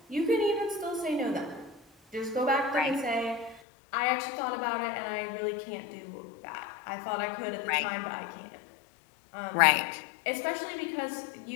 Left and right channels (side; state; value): right; drops out; at 3.6 s